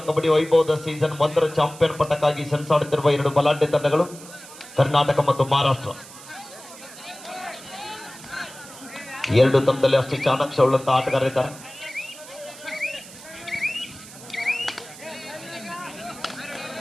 ಕಬಡ್ಡಿ ವೈಭವದ ಸೀಸನ್ 1 ಚಾಂಪಿಯನ್ ಪಟ್ಟಕ್ಕಾಗಿ ಸೆಣಸಾಡುತ್ತಿರುವ 2 ಬಲಾಢ್ಯ ತಂಡಗಳು ಕರ್ನಾಟಕ ಮತ್ತು ಮಹಾರಾಷ್ಟ್ರ. 2 ತಂಡದಲ್ಲಿ ಅಷ್ಟೇ ಚಾಣಾಕ್ಷ ಉಳ್ಳಂತ ಆಟಗಾರರಿದ್ದಾರೆ.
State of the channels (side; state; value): right; noise; hiss, 17 dB below the sound